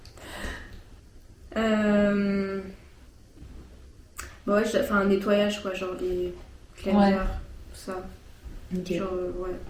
Bah ouais, enfin un nettoyage quoi, genre les cleansers, Ouais. tout ça. Ok. Genre, ouais.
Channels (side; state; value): both; identical; correlation 1.00